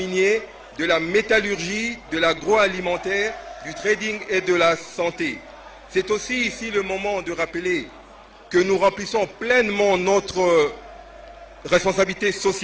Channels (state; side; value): identical; both; correlation 1.00